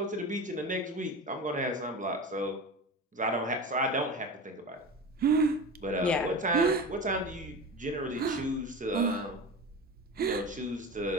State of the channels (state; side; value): normal; both; correlation 0.29